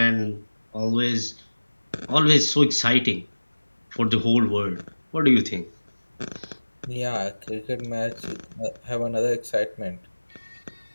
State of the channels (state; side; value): inverted; both; correlation -1.00